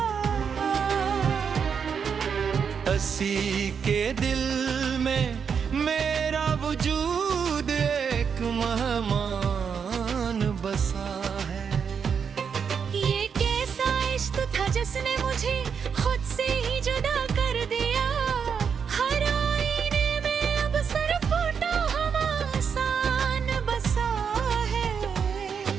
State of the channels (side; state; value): left; quieter; 6.7 dB